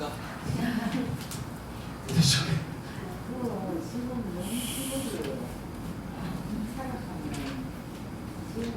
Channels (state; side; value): identical; both; correlation 1.00